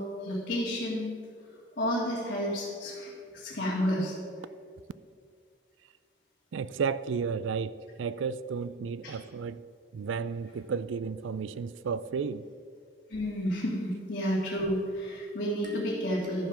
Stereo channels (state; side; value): normal; both; correlation 0.35